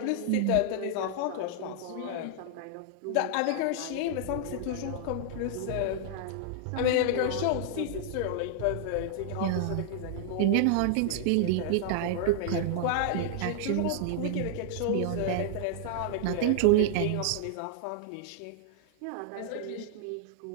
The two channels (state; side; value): different; both; correlation -0.01